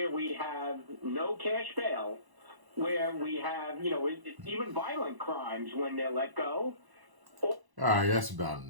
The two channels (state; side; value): late; left; 1.1 ms